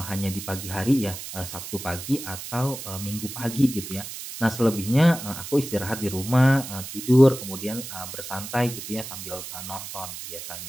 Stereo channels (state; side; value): noise; right; hiss, 9 dB below the sound